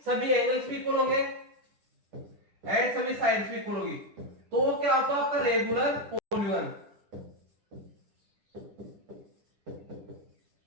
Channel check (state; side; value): late; left; 10 ms